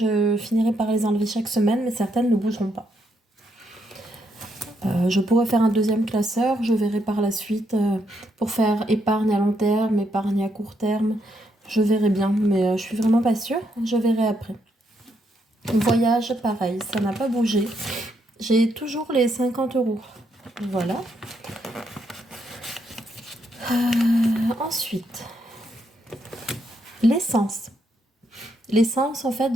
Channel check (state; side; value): normal; both; correlation 0.77